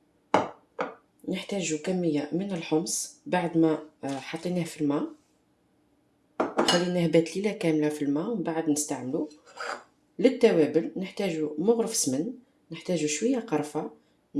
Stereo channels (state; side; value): identical; both; correlation 1.00